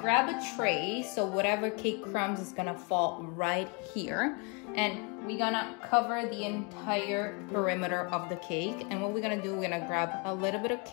grab a tray, so whatever cake crumbs is gonna fall right here, and we're gonna cover the entire perimeter of the cake. And what we're gonna do, we're gonna grab a little bit of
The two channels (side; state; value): right; quieter; 32.7 dB